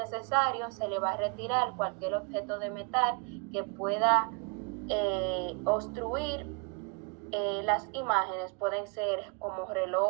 se le va a retirar cualquier objeto de metal que pueda obstruir las imágenes. Pueden ser como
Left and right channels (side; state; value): left; quieter; 34.7 dB